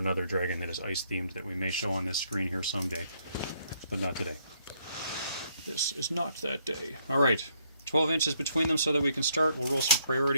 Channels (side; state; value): both; inverted; correlation -0.71